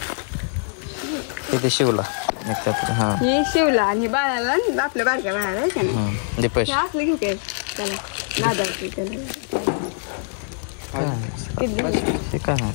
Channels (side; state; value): right; silent; digital silence